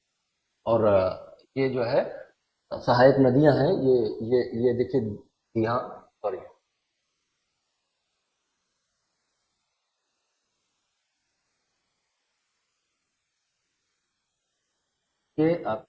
और ये जो है सहायक नदियां हैं, ये देखिए यहाँ, सॉरी, ये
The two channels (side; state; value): both; identical; correlation 1.00